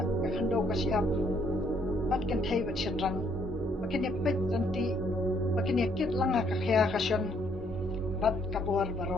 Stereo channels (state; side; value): normal; both; correlation 0.68